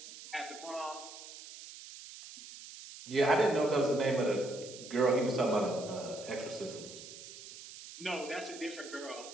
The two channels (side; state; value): right; noise; hiss, 14 dB below the sound